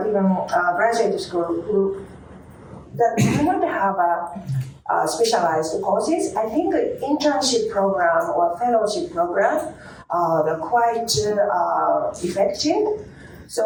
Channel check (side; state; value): both; identical; correlation 1.00